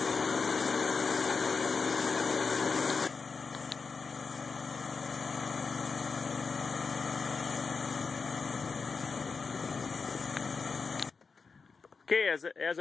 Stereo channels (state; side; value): quieter; right; 4.9 dB